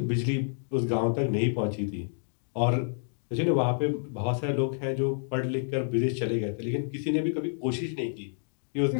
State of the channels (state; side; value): silent; right; digital silence